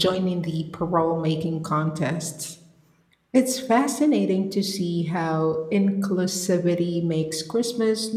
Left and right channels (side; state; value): both; identical; correlation 1.00